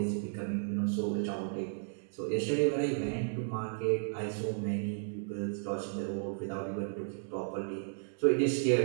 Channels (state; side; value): silent; left; digital silence